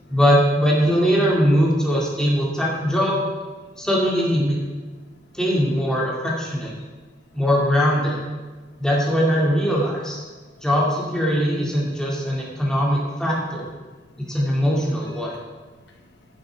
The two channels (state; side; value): normal; both; correlation 0.75